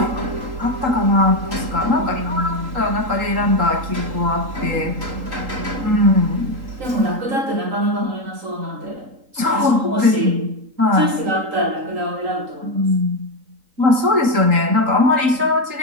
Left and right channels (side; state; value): left; late; 3.8 ms